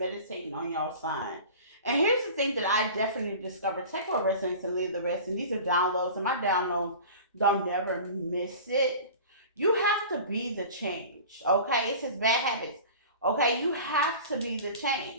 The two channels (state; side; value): inverted; both; correlation -0.38